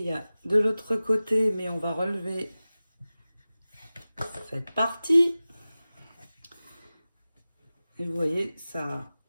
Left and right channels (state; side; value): inverted; both; correlation -0.96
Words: de l'autre côté, mais on va relever cette partie. Et vous voyez, ça,